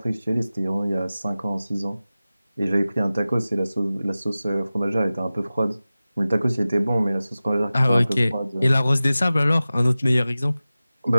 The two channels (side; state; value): both; inverted; correlation -0.96